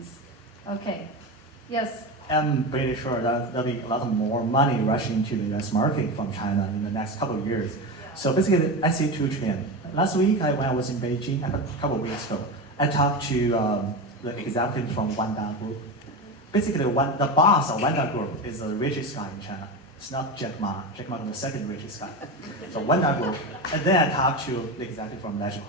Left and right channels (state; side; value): normal; both; correlation 0.21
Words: Okay. Yes. I'm pretty sure that there'll be a lot more money rushing into the US market from China in the next couple of years. Yeah. So basically, I see 2 trends. Last week, when I was in Beijing, a couple of weeks ago, I talked to the executives from Wanda Group. Basically, the boss of Wanda Group is the richest guy in China. It's not Jack Ma. Jack Ma is the second richest guy. So Wanda Group. And then I talked to the executive from Legend